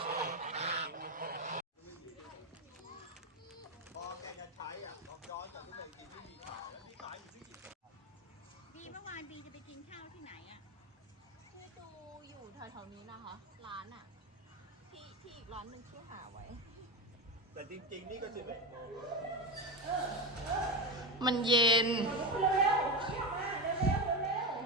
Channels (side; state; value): both; normal; correlation 0.16